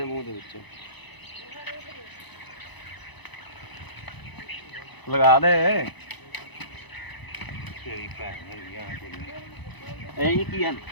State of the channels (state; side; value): late; right; 1.0 ms